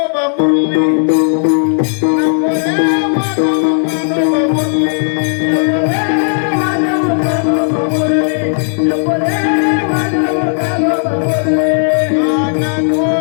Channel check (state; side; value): silent; right; digital silence